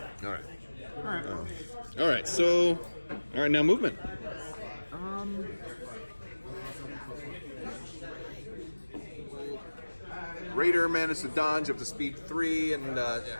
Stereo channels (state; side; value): inverted; both; correlation -1.00